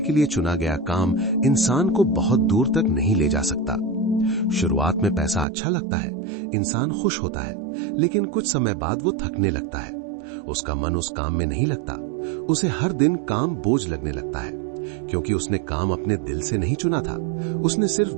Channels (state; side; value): drops out; left; at 5.5 s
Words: लिए चुना गया काम इंसान को बहुत दूर तक नहीं ले जा सकता। शुरुआत में पैसा अच्छा लगता है, इंसान खुश होता है, लेकिन कुछ समय बाद वो थकने लगता है। उसका मन उस काम में नहीं लगता। उसे हर दिन काम बोझ लगने लगता है, क्योंकि उसने काम अपने दिल से नहीं चुना था। उसने सिर्फ